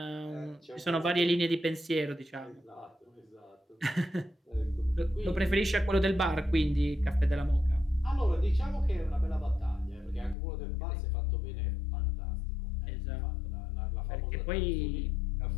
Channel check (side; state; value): right; drops out; at 10.4 s